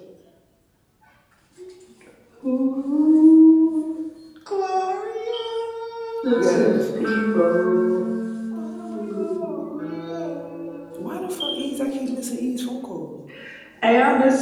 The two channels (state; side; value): identical; both; correlation 1.00